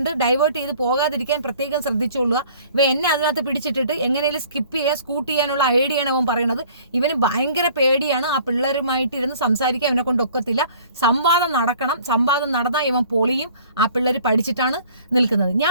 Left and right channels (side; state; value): both; inverted; correlation -0.52